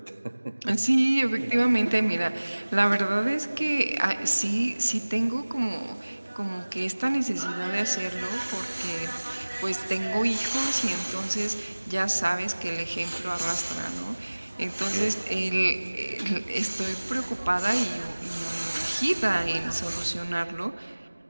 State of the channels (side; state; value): both; inverted; correlation -1.00